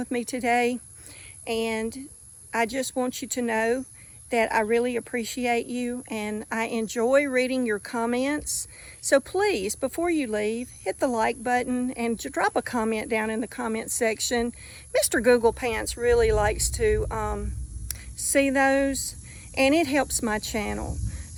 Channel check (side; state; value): both; identical; correlation 1.00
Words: me today, and I just want you to know that I really appreciate you, and I enjoy reading your comments. So please, before you leave, hit the like button and drop a comment down in the comment section. Mr. Google Pants really likes to see those, and it helps my channel.